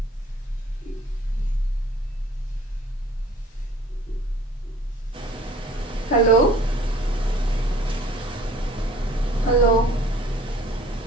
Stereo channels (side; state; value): both; normal; correlation 0.52